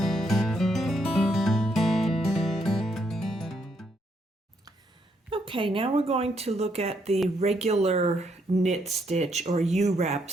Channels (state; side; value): normal; both; correlation 0.74